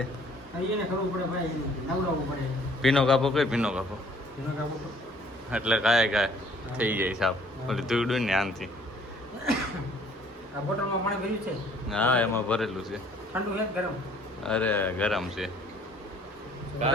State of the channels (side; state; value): both; normal; correlation 0.58